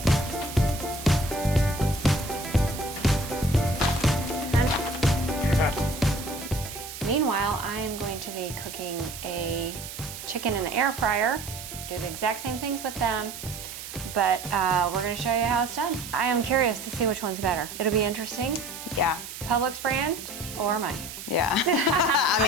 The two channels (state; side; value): noise; right; hiss, 11 dB below the sound